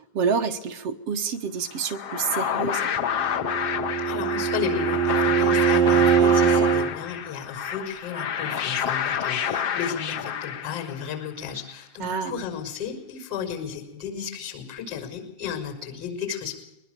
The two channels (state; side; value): late; left; 7.5 ms